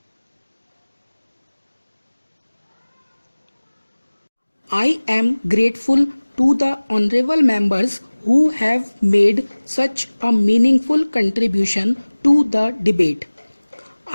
I am grateful to the honorable members who have made such a meaningful contribution to the debate.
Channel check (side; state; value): both; inverted; correlation -1.00